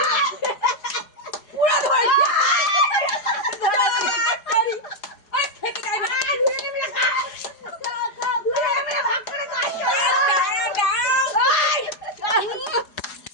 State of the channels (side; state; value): right; late; 4.8 ms